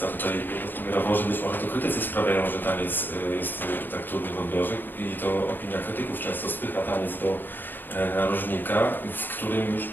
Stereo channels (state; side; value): late; right; 0.092 ms